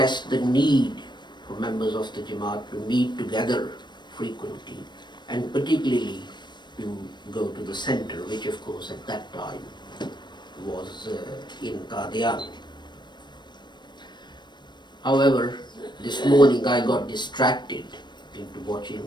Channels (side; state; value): right; late; 0.22 ms